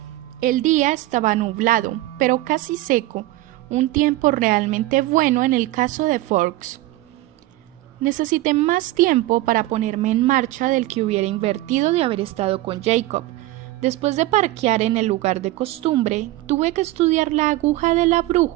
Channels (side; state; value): left; quieter; 17.2 dB